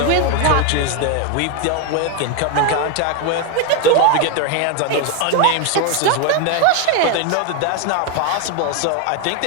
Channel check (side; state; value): both; different; correlation 0.01